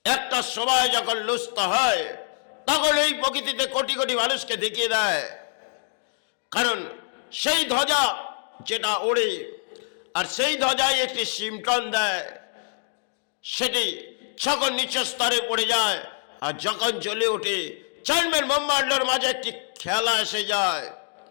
একটা সময় যখন লুস্ত হয়, তখন এই প্রকৃতিতে কোটি কোটি মানুষকে দেখিয়ে দেয়। কারণ সেই ধ্বজা যেটা ওড়ে, আর সেই ধ্বজায় একটি সিমটন দেয়, সেটি যখন নিচ স্তরে পড়ে যায় আর যখন জ্বলে ওঠে, জানবেন ব্রহ্মাণ্ডের মাঝে একটি খেলা এসে যায়,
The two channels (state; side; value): silent; right; digital silence